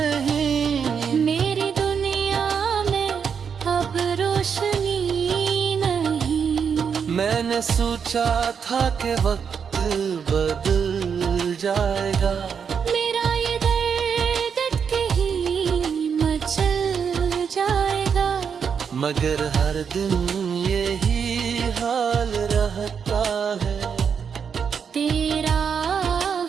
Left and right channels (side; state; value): left; quieter; 6.7 dB